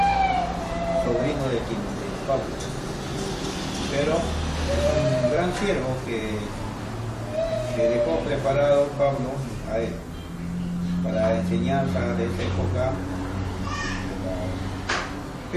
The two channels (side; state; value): both; identical; correlation 1.00